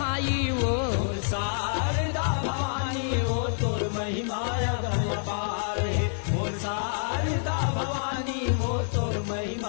वो शारदा भवानी वो तोर महिमा अगम पार है। मोर शारदा भवानी वो तोर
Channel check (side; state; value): right; silent; digital silence